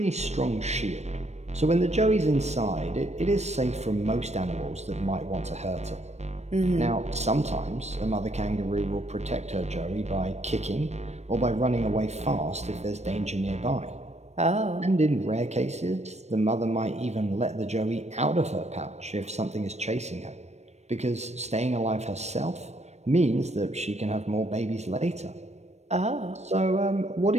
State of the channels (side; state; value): left; late; 0.32 ms